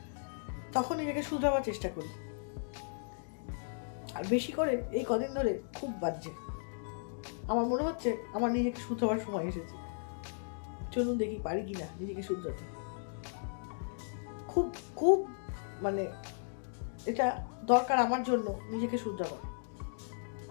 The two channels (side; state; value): right; silent; digital silence